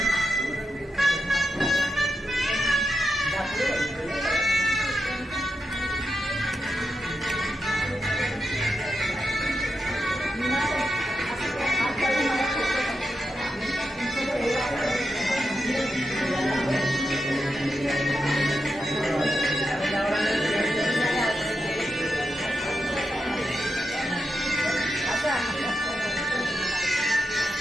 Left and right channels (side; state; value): both; normal; correlation 0.87